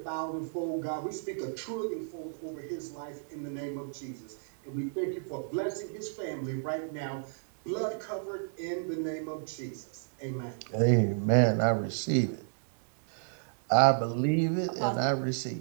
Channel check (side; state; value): left; silent; digital silence